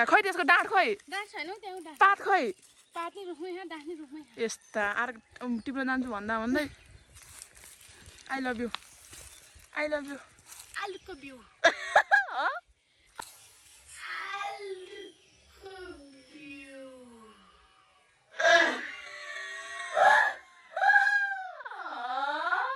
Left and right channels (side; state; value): both; identical; correlation 1.00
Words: खै त्यसको डाँठ खै पात खै यस्ता आर टिप्न जान्छु भन्दा भन्दै आई लभ यु आलुको बिउ